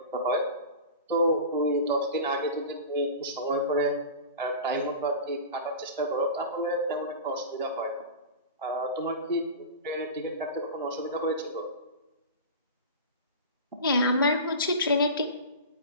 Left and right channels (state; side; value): inverted; both; correlation -0.31